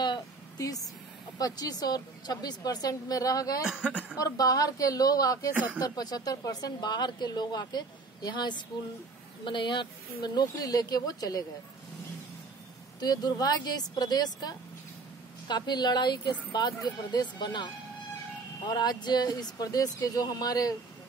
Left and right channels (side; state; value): left; quieter; 4.0 dB